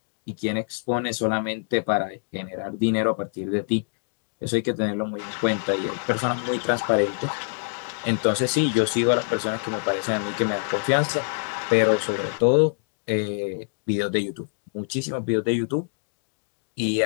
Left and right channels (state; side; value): silent; right; digital silence